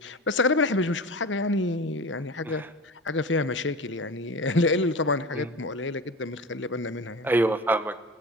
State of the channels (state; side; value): normal; both; correlation 0.32